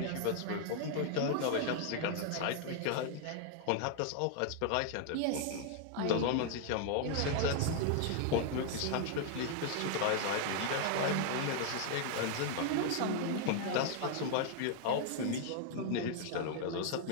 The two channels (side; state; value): both; different; correlation 0.00